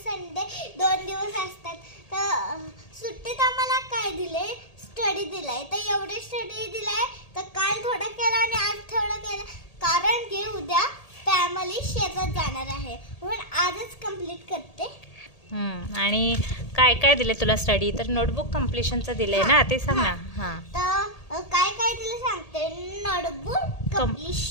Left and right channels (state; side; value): late; right; 1.8 ms